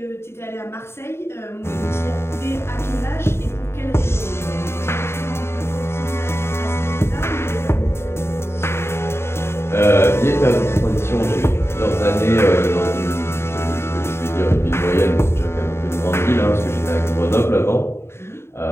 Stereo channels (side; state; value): right; late; 0.12 ms